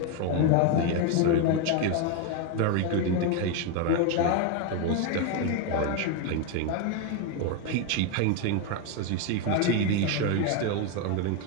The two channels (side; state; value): both; different; correlation 0.02